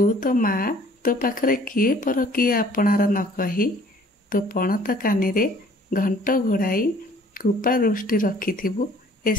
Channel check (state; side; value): normal; both; correlation 0.55